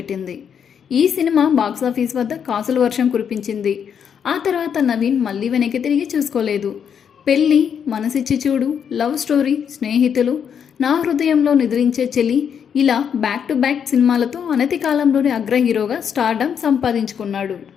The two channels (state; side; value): quieter; right; 7.7 dB